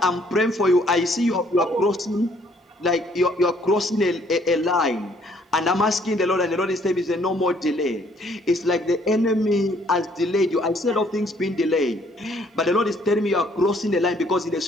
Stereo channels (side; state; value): both; normal; correlation 0.64